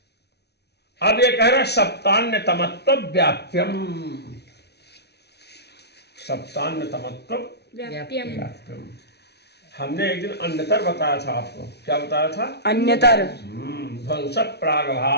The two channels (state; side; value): late; right; 0.49 ms